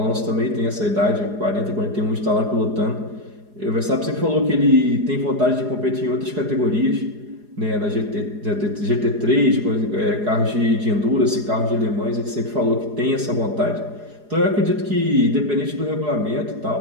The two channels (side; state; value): left; late; 4.8 ms